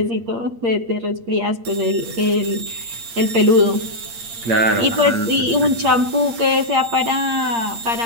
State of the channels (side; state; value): left; late; 8.7 ms